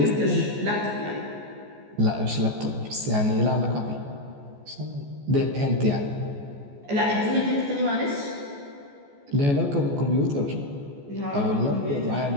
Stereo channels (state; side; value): late; left; 14 ms